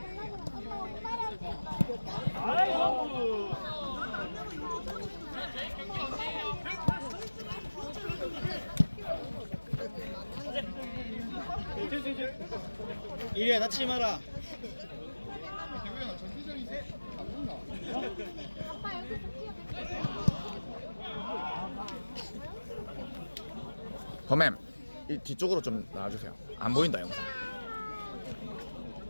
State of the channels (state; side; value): inverted; both; correlation -1.00